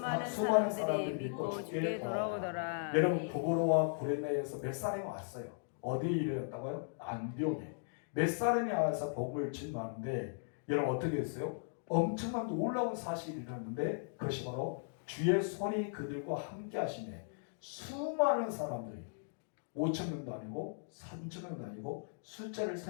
사람들이 믿고 주께 돌아오더라. 여러분 구브로와 고레네에서 몇 사람이 왔어요. 어디에 이르렀다고요? 안디옥에. 몇 사람이 와서 복음을 증거하는데 여러분 어떻게 했어요? 엄청난 놀라운 사실이 일어났는데 그것이 바로 주의 손이 그들과 함께 하시네. 수많은 사람들이 5,000명도 아니고 3,000명도 아니고 숫자를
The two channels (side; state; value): right; silent; digital silence